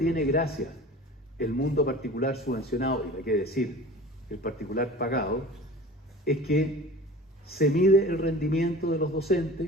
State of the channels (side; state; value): both; normal; correlation 0.39